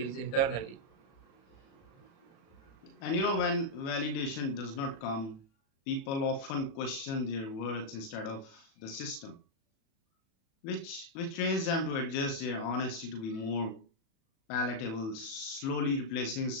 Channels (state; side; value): late; right; 36 ms